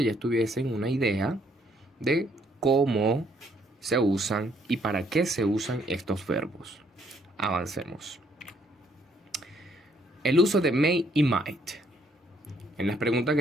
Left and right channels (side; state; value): both; normal; correlation 0.68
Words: ya tuviesen una idea de cómo se usan y para qué se usan estos verbos. Avancemos. El uso de may y might. En las preguntas